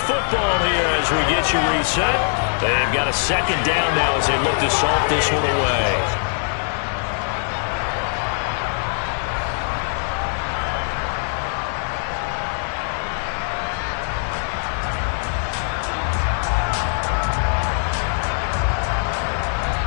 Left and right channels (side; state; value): right; silent; 64 dB below the other